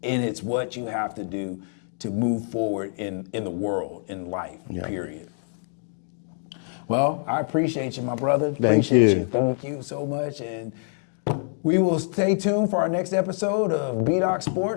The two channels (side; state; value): right; silent; 61 dB below the other